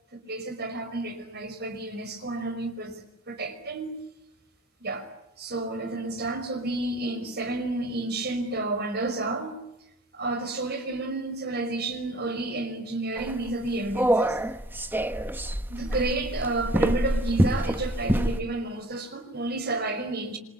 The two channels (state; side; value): normal; both; correlation 0.49